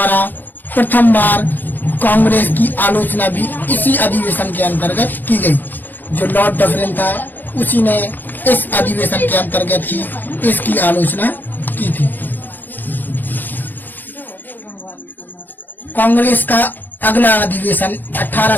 प्रथम बार कांग्रेस की आलोचना भी इसी अधिवेशन के अंतर्गत की गई। जो लॉर्ड डफरिन था, उसी ने इस अधिवेशन के अंतर्गत ही इसकी आलोचना की थी। कांग्रेस का अगला अधिवेशन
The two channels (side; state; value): right; late; 0.088 ms